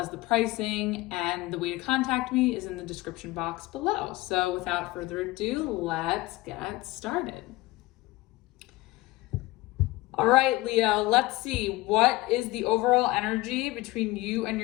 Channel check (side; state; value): right; quieter; 19.7 dB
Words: the pricing and the way to contact me is in the description box below. So without further ado, let's get started. All right, Leo, let's see. What is the overall energy between you and